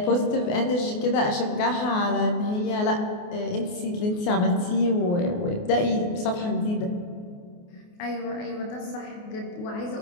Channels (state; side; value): late; right; 28 ms